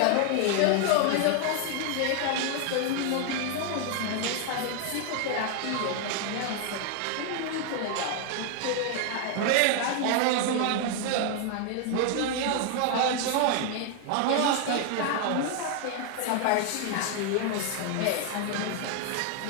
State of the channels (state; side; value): different; both; correlation 0.00